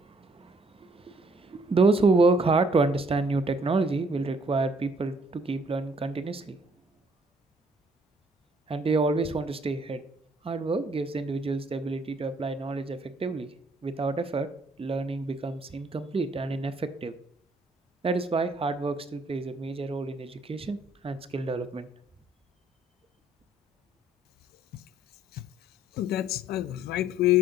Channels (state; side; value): normal; both; correlation 0.63